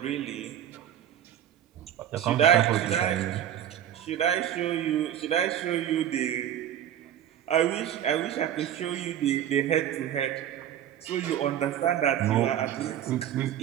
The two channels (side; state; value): left; quieter; 10.7 dB